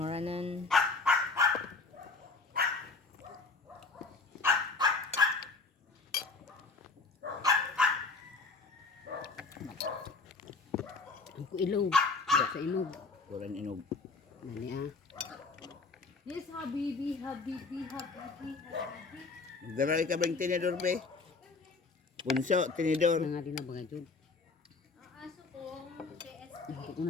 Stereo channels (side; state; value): right; quieter; 4.0 dB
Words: Ang ilog. Sa ilog. Kuran inog. Nani Yes, Habibi. Magdaray ka bang tinidor, pe? Punso, tinidor. Nga din na bagay dyan. Ang aso kong KSP. Ito ko